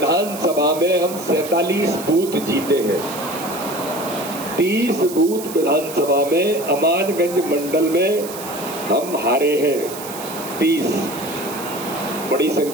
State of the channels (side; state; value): right; noise; hiss, 12 dB below the sound